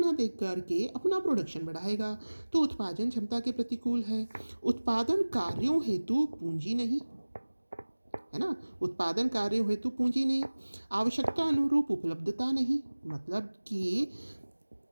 देख करके अपना प्रोडक्शन बढ़ाएगा। तो उत्पादन क्षमता के प्रतिकूल है। उत्पादन कार्यों हेतु पूंजी नहीं, है ना, उत्पादन कार्यों हेतु पूंजी नहीं। आवश्यकता अनुरूप उपलब्धता नहीं, मतलब कि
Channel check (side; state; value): both; inverted; correlation -1.00